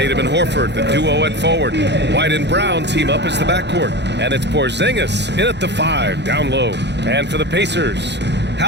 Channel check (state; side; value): late; left; 0.50 ms